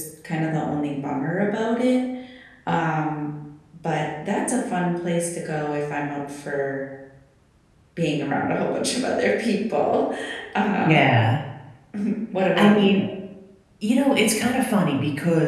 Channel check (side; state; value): both; identical; correlation 1.00